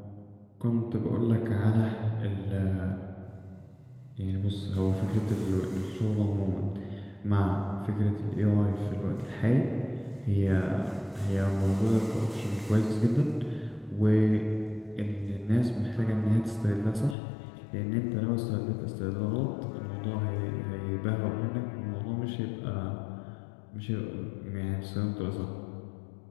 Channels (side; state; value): right; drops out; at 17.2 s